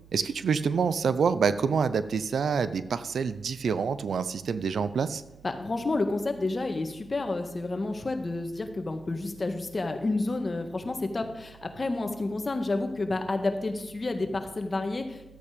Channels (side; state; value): right; noise; hum, 23 dB below the sound